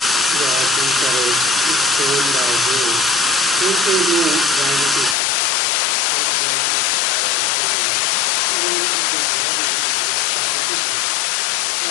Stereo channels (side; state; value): right; drops out; at 5.2 s